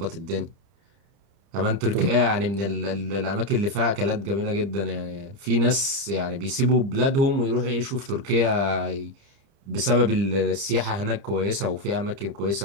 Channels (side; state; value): left; late; 30 ms